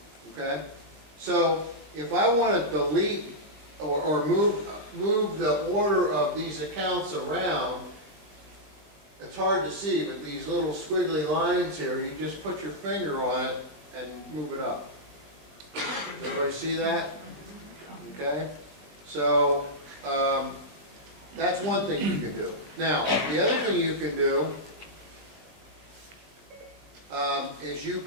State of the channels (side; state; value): left; late; 20 ms